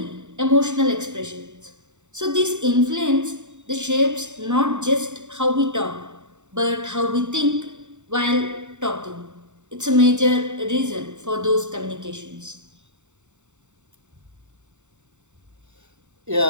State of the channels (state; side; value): late; left; 0.84 ms